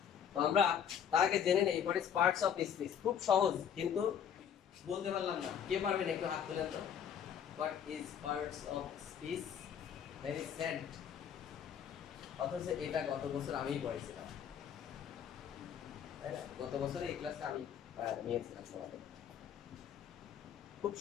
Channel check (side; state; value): right; quieter; 8.4 dB